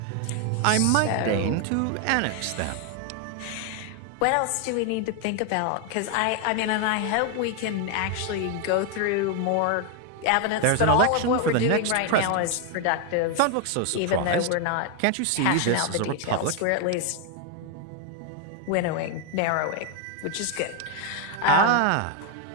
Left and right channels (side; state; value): both; different; correlation 0.01